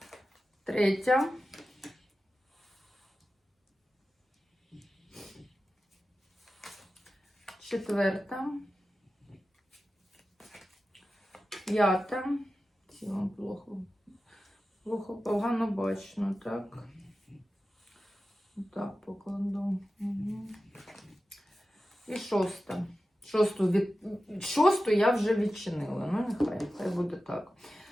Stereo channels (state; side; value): normal; both; correlation 0.93